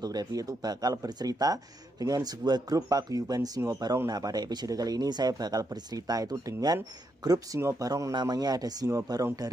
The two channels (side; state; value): both; normal; correlation 0.80